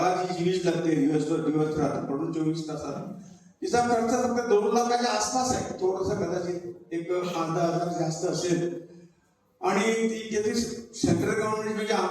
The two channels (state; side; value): identical; both; correlation 1.00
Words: जी वीज लागते दिवस रात्र पडून 24 तासात तिचा खर्च फक्त 2 लाखाच्या आसपास आहे. थोडंसं कदाचित 1,000 जास्त असेल आणि ती जे सेंट्रल गव्हर्नमेंट म्हणजे